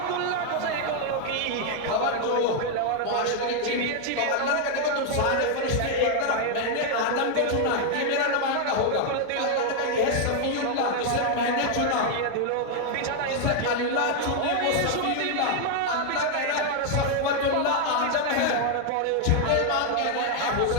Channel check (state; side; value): different; both; correlation 0.00